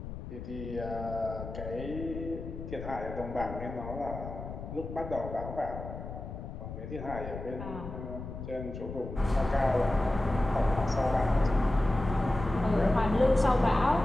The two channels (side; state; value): left; noise; rumble, 9 dB below the sound